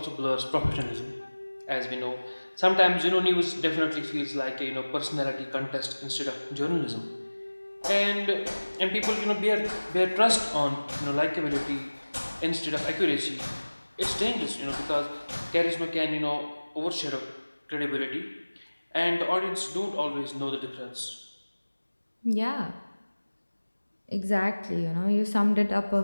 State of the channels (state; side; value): inverted; both; correlation -1.00